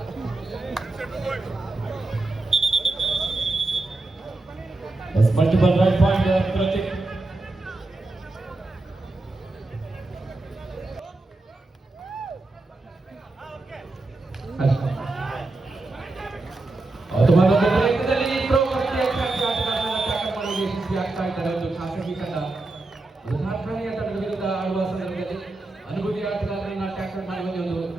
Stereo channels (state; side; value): quieter; left; 3.0 dB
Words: multiple right point Pratik. ಅನುಭವಿ ಆಟಗಾರರನ್ನ ಟ್ಯಾಕಲ್ ಮಾಡುವ ಒಂದು